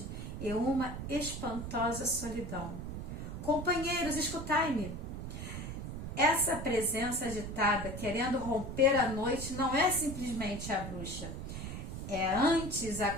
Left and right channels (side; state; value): right; noise; rumble, 6 dB below the sound